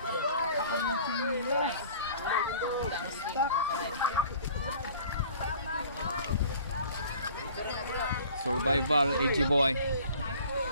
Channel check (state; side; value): inverted; both; correlation -0.49